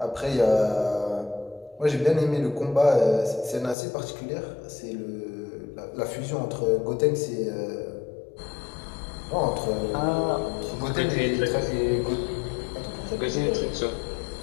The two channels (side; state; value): right; drops out; at 3.8 s